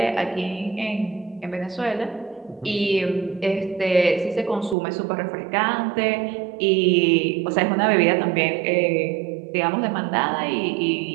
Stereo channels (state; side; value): drops out; left; at 4.8 s